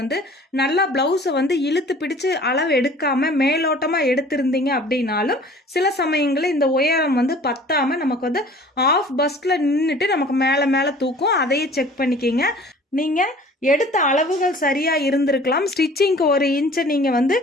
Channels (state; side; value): normal; both; correlation 0.48